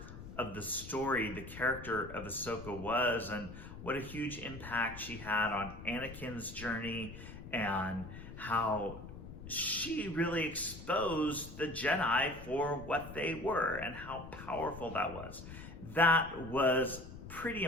of the story the character of Ahsoka was, and what a huge impact she had on Anakin's journey, and how she really exposed the Jedi for what they were and how powerful that was. That was pretty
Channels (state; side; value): noise; left; rumble, 13 dB below the sound